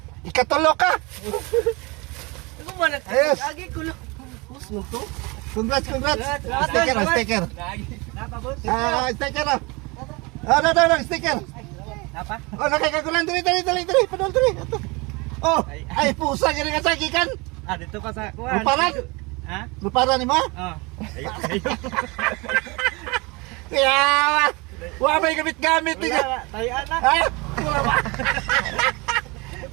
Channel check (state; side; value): quieter; left; 26.5 dB